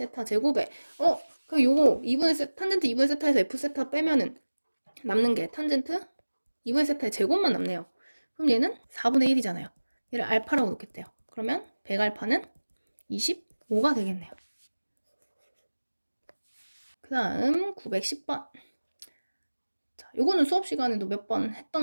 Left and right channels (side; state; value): both; inverted; correlation -1.00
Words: 제곱에 그럼 요거 탄젠트 2분의 세타에서 f 세타 빼면은 남는 게 탄젠트 2분의 세타의 제곱만 남네요. 그럼 얘는 4분의 1이잖아요. 얘를 알파라고 놓겠대요. 그러면 100알파는 25가 되겠네요. 그 다음 910번. 자, 요거는 수업 시간에도 몇 번